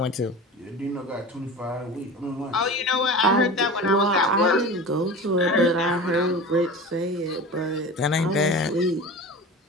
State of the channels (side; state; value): both; normal; correlation 0.33